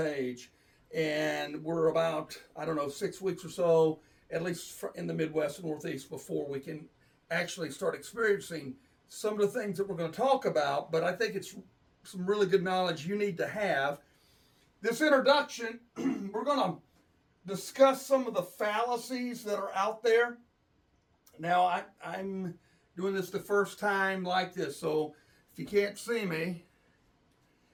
And we're about, 6 weeks or so, at least in the Midwest and Northeast, before we can actually start experiencing some of the things that we're going to talk about. But I think it's some really good knowledge you need to have. This introduction, we're going to discuss some of the fallacies that are out there. Now, I'm doing this the first time like this, so if you can't see me,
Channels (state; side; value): identical; both; correlation 1.00